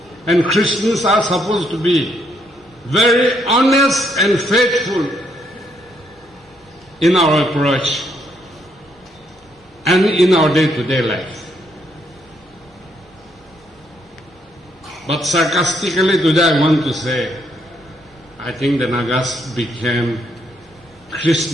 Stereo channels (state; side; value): normal; both; correlation 0.73